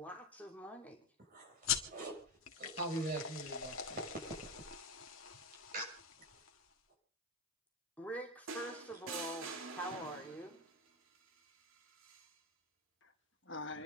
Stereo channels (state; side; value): normal; both; correlation 0.13